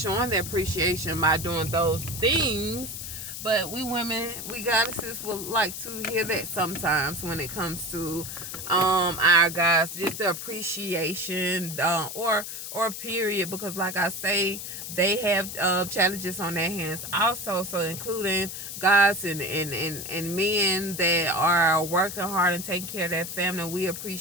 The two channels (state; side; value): noise; left; hiss, 8 dB below the sound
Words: showing their appreciation by doing those things. But we women, we goddesses, would like to hear that sometimes when it comes to our guys, just the appreciation, or period, because like I say, they have challenges on their hands also. So including guys and men that are working hard and taking care of their family, we